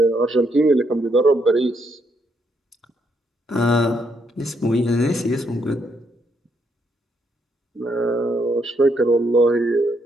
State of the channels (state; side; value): normal; both; correlation 0.75